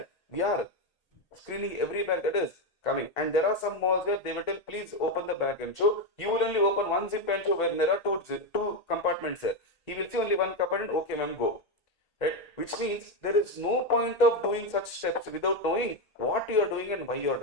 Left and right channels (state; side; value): late; right; 1.8 ms